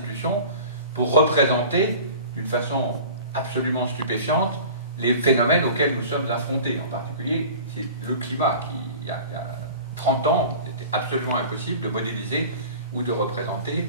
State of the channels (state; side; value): inverted; both; correlation -0.40